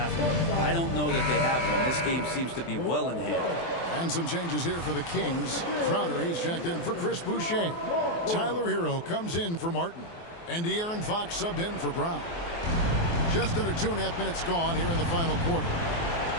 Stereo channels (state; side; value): late; right; 24 ms